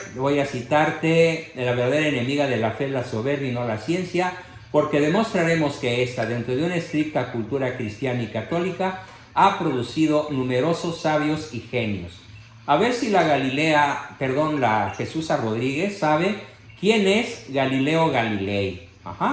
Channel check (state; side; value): identical; both; correlation 1.00